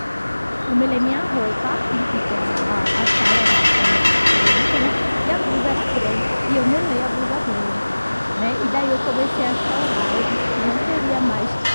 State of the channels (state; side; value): inverted; both; correlation -1.00